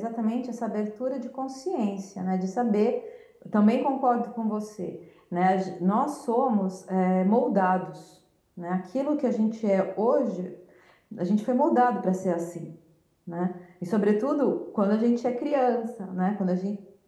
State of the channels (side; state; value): both; identical; correlation 1.00